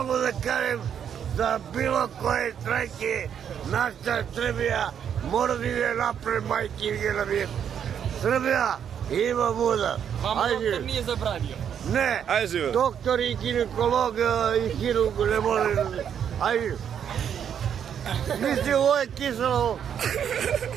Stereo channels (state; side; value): quieter; left; 8.5 dB